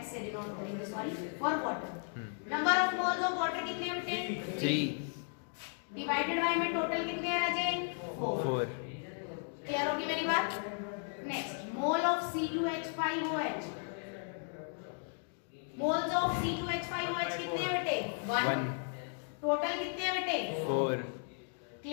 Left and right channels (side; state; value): right; silent; 54 dB below the other